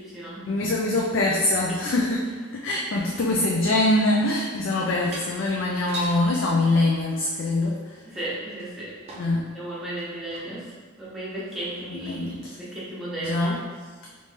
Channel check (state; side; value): normal; both; correlation 0.42